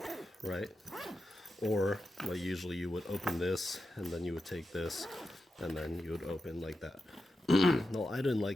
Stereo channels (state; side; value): normal; both; correlation 0.90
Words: right? Or well, usually you would open this, and then you would take this, and then you would open like that. No, I didn't